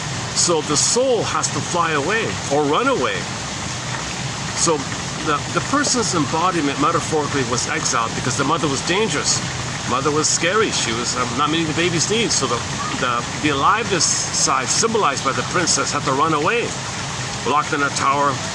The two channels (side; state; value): both; identical; correlation 1.00